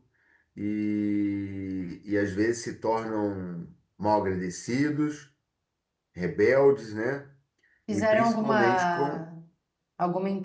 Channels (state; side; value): identical; both; correlation 1.00